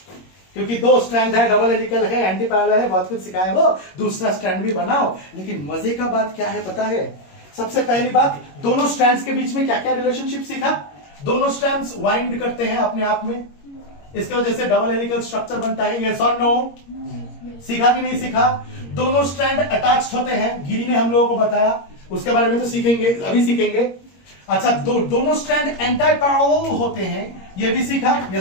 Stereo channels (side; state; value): right; late; 21 ms